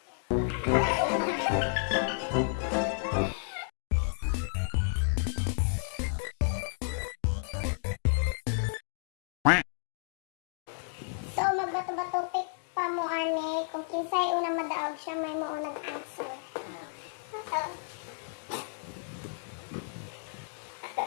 So, magbato-bato pick pa mo, ani. Kung kinsay unang madaog siya, may mo unang answer.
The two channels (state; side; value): silent; right; digital silence